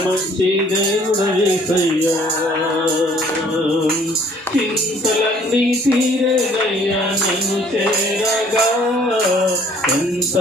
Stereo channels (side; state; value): both; normal; correlation 0.58